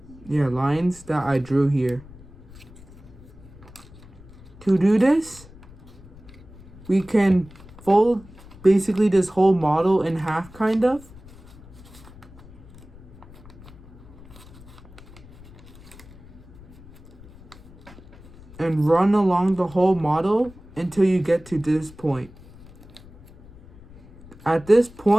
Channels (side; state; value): left; noise; rumble, 20 dB below the sound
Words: lines that I drew here. To do this, we can fold basically this whole model in half, kind of. And run along the whole model until you get to this point. At this